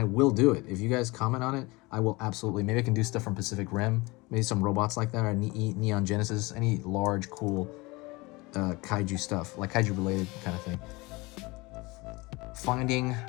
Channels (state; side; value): quieter; right; 23.7 dB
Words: will do it. If you guys comment on it, I will absolutely. Maybe I can do stuff from Pacific Rim, maybe some robots like that, or Neon Genesis, any large, cool kaiju stuff, like kaiju related kind of thing. Finding